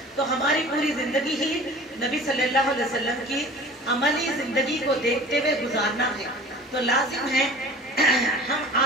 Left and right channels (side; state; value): both; normal; correlation 0.43